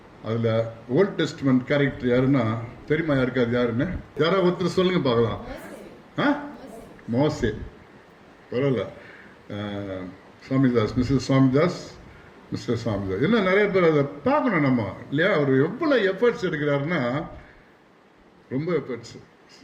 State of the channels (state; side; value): identical; both; correlation 1.00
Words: அதில் ஓல்ட் டெஸ்ட்மெண்ட் கேரக்டர் யாருன்னா தெரியுமா? யாருக்காது யாருன்னு யாராவது ஒருத்தர் சொல்லுங்க பார்க்கலாம். மோசே. பரவாயில்ல. சுவாமிதாஸ், மிஸ்டர் சுவாமிதாஸ். இன்னும் நிறைய பேர் அதை பார்க்கணும் நம்ம, இல்லையா? அவர் எவ்வளோ எஃபர்ட்ஸ் எடுக்கிறாருன்னா, ரொம்ப எஃபர்ட்ஸ்.